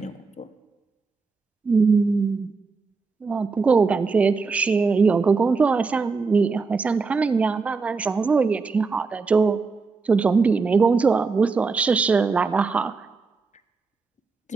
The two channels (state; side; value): quieter; left; 4.5 dB